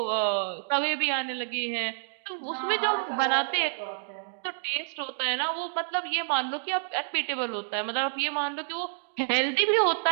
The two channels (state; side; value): silent; left; digital silence